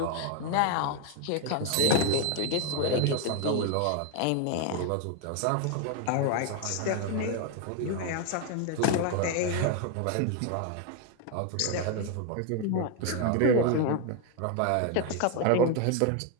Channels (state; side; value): different; both; correlation 0.01